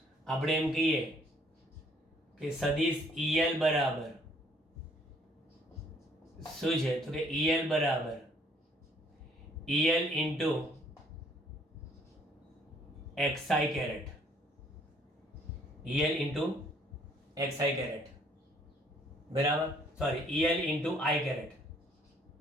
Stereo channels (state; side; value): normal; both; correlation 0.63